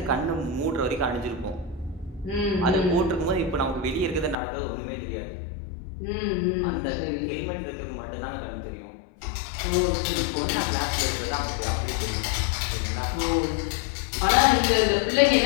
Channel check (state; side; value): drops out; right; at 4.4 s